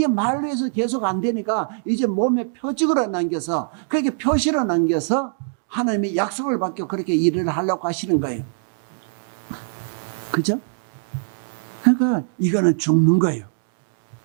말로 해서 계속 안 되니까 이제 몸에 표적으로 남겨서 그렇게 표시로 남겨서 하나님이 약속을 받고 그렇게 일을 하려고 하시는 거예요. 그죠? 그러니까 이거는 죽는 거예요.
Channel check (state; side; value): silent; left; digital silence